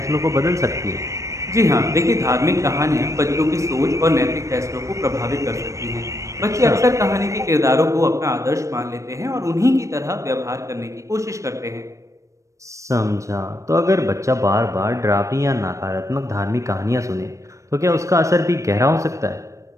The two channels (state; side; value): late; left; 0.15 ms